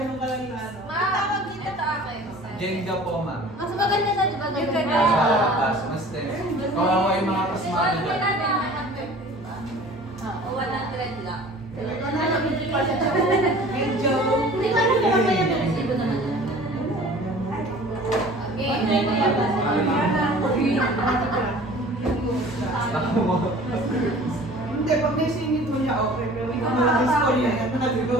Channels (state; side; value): normal; both; correlation 0.45